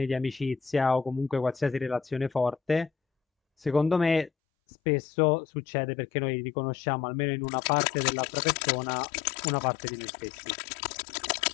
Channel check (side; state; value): right; drops out; at 4.3 s